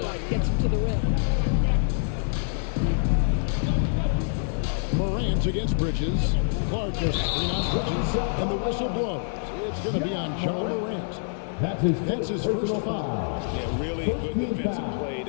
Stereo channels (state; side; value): silent; right; 58 dB below the other